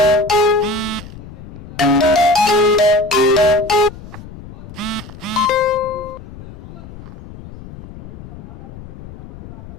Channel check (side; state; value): left; noise; rumble, 16 dB below the sound